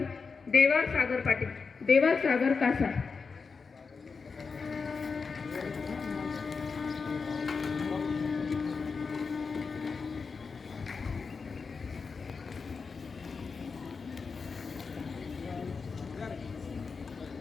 देवा सागर पाटील, देवा सागर कासा.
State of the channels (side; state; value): right; quieter; 5.0 dB